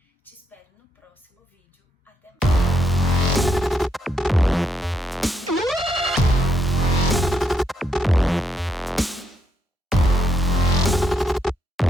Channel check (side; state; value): both; normal; correlation 0.78